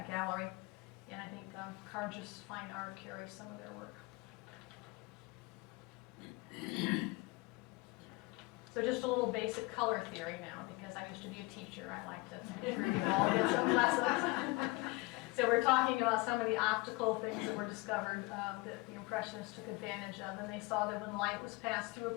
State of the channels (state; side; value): quieter; right; 23.2 dB